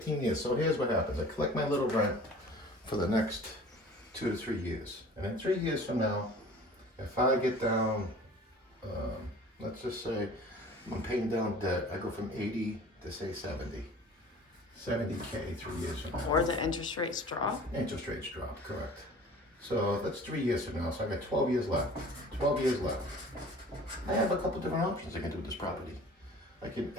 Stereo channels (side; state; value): both; normal; correlation 0.45